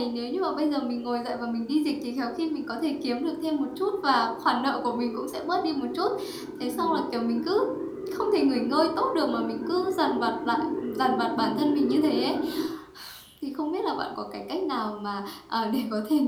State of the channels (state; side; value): identical; both; correlation 1.00